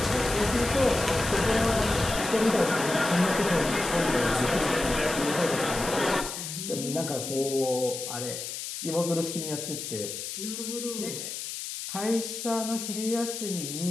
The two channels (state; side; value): noise; left; hiss, 7 dB below the sound